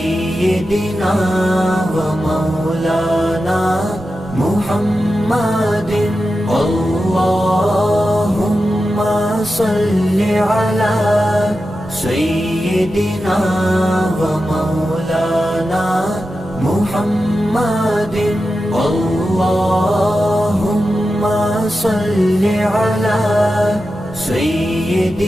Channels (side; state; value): left; noise; hum, 27 dB below the sound